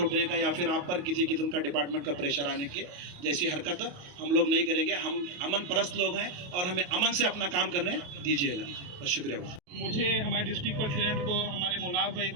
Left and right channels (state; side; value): late; left; 28 ms